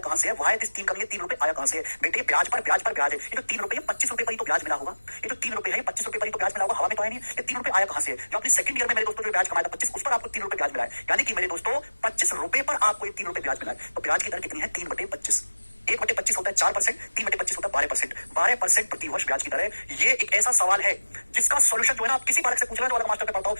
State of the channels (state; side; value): inverted; both; correlation -1.00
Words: से है। वाई दिस 3 कमी, 3 रुपए आया कहां से है। बेटे ब्याज पर ब्याज है। ये जो 3 रुपए 25 रुपए पर ही तो ब्याज मिला होगा। ये जो 3 रुपए है 25 रुपए पर ही तो ब्याज मिला होगा, हवा में तो है नहीं। ये 3 रुपए आया कहां से है, जो अपनी सेकंड ईयर में मेरे दोस्तों जो ब्याज कमाया था 25, उस पर आपको 3 रुपए ब्याज मिला है। यानी कि मेरे दोस्तों 25 रुपए पर आपको ये 3 रुपए ब्याज मिला है। तो ब्याज की दर कितनी है, 3/25। 1/25 होता है 4%, 3/25 होता है 12%। 12% प्रति वर्ष ब्याज की दर है। ये एक ऐसा सवाल है जिसका सॉल्यूशन जो है ना, आप किसी बालक से पूछ रहे हो, अलग मास्टर पे पढ़ता हो